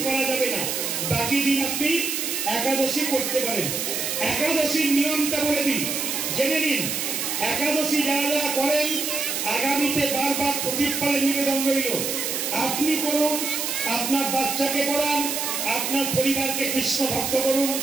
করা যাবে না, বাকি দিন আপনি একাদশী করতে পারেন। একাদশীর নিয়মটা বলে দিন, জেনে নিন। একাদশী যারা যারা করেন আগামীতে বারবার প্রদীপ পালে নিবেদন রইল, আপনি করুন, আপনার বাচ্চাকে পড়ান, আপনার পরিবারকে কৃষ্ণ ভক্ত করুন,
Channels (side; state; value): right; noise; hiss, 2 dB below the sound